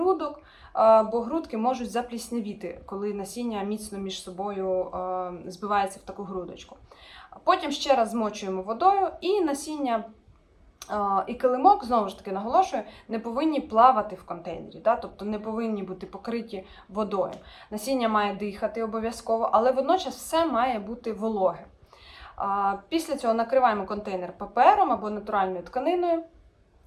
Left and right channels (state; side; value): identical; both; correlation 1.00